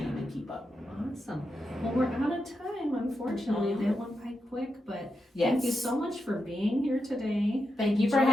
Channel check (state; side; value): normal; both; correlation 0.87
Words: and keep up. Awesome. Well, we're out of time, unfortunately. That went by quick, but Yes. thank you so much for being here today. Thank you for